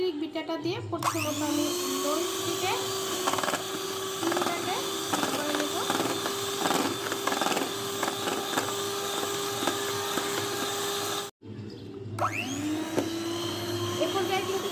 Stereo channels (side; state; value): both; identical; correlation 1.00